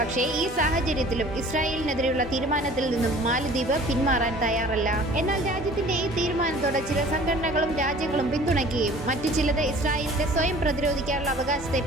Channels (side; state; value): both; normal; correlation 0.48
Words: ഈ സാഹചര്യത്തിലും ഇസ്രായേലിനെതിരെയുള്ള തീരുമാനത്തിൽ നിന്നും മാലിദ്വീപ് പിന്മാറാൻ തയ്യാറല്ല. എന്നാൽ രാജ്യത്തിന്റെ ഈ തീരുമാനത്തോടെ ചില സംഘടനകളും രാജ്യങ്ങളും പിന്തുണയ്ക്കുകയും മറ്റു ചിലത് ഇസ്രായേലിന്റെ സ്വയം പ്രതിരോധിക്കാനുള്ള അവകാശത്തെ